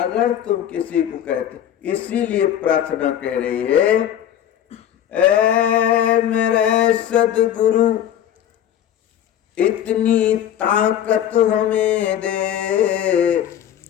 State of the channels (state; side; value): quieter; right; 10.5 dB